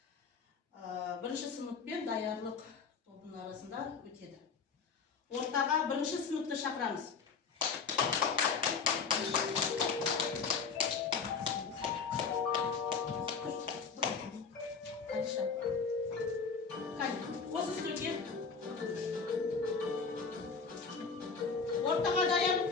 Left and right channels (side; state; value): right; quieter; 5.4 dB